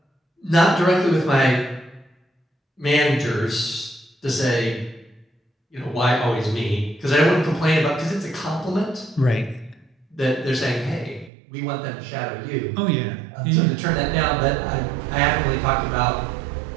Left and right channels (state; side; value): drops out; left; at 11.3 s